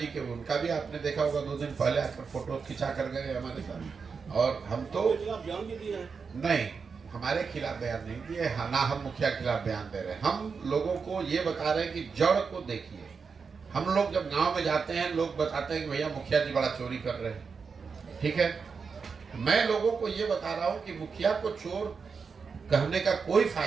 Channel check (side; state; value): left; quieter; 5.4 dB